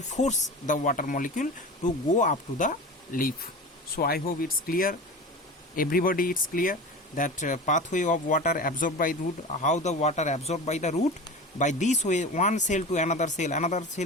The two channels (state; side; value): normal; both; correlation 0.31